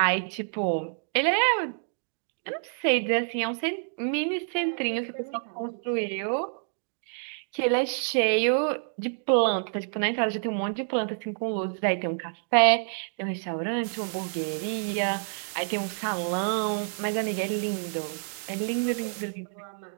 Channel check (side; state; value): left; silent; digital silence